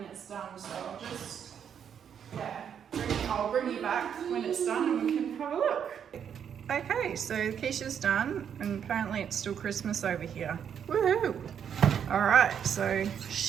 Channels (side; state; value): left; quieter; 8.2 dB